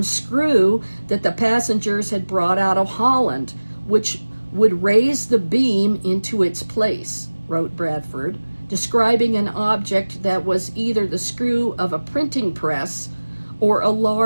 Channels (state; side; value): inverted; both; correlation -1.00